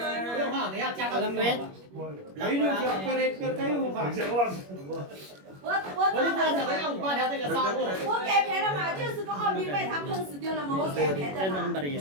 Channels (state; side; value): late; left; 21 ms